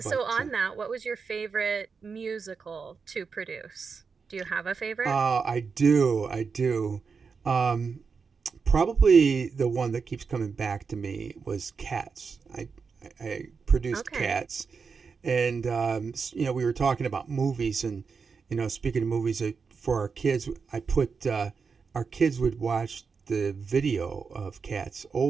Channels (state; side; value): quieter; left; 5.3 dB